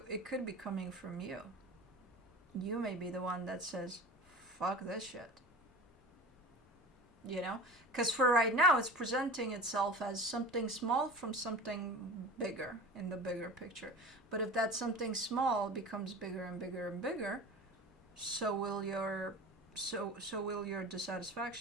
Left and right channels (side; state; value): both; normal; correlation 0.34